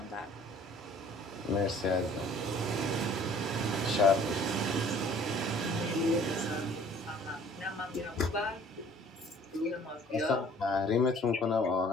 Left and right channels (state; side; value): normal; both; correlation 0.53